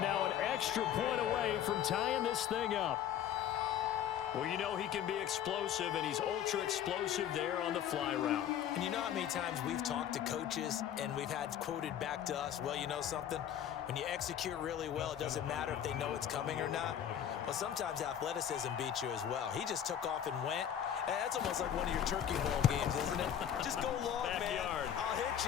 an extra point away from tying this thing up. Well, you know he can be explosive, and he's ultra-explosive there on the fly route. And you know how many times we've talked to coaches and we've had quoted back to us, well, you know something? When you execute really well, it doesn't matter if they know it's coming or not. Well, sometimes athleticism beats you as well. He just took off and went. And that's almost like one of your turkey bowl games, isn't it? Just go long, Backyard. man. I'll hit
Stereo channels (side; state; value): right; quieter; 9.8 dB